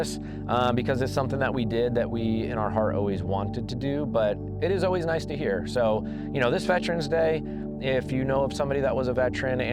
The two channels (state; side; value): identical; both; correlation 1.00